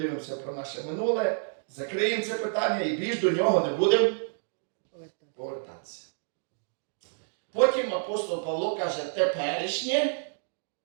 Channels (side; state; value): left; silent; digital silence